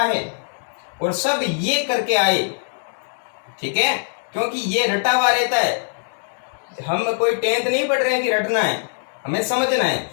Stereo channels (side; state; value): right; silent; 60 dB below the other